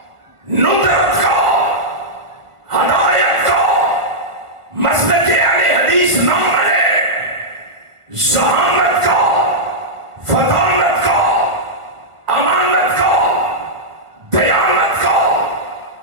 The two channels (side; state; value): left; late; 1.5 ms